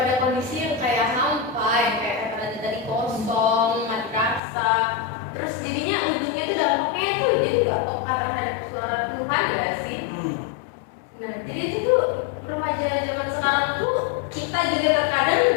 kondisi yang kayak hampa, yang kayak kata tadi kosong, mati rasa. Terus jadinya ujungnya itu dampaknya tuh jadi nggak peka terhadap suara Tuhan nggak sih? Nah jadi itu tuh remaja zaman sekarang tuh kita juga terkadang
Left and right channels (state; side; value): drops out; right; at 4.4 s